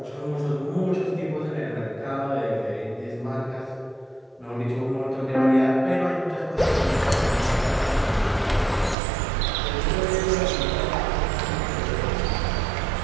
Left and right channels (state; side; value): drops out; left; at 9.0 s